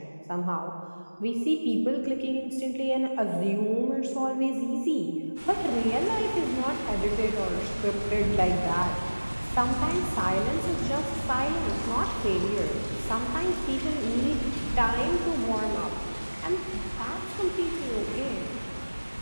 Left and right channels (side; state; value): both; inverted; correlation -1.00